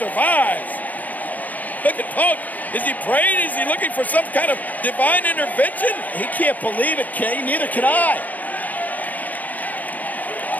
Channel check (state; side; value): late; right; 0.080 ms